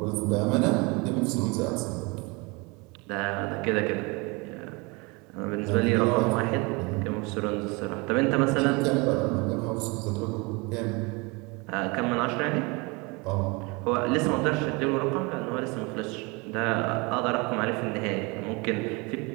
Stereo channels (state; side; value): quieter; left; 27.5 dB